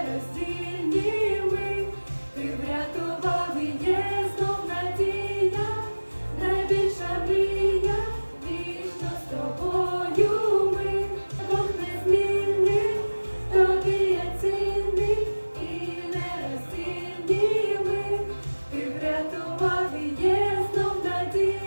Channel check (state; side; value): inverted; both; correlation -1.00